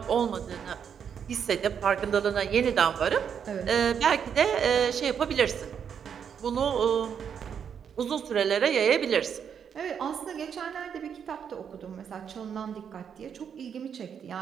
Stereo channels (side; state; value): left; quieter; 7.6 dB